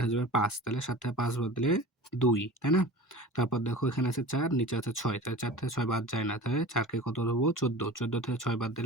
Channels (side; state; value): both; normal; correlation 0.37